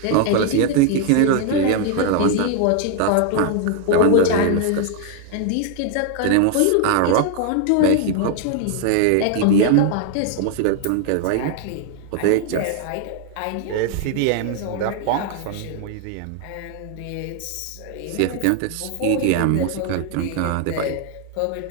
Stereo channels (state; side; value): different; both; correlation 0.00